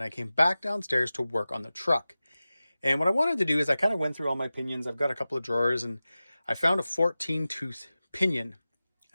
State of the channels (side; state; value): both; inverted; correlation -0.96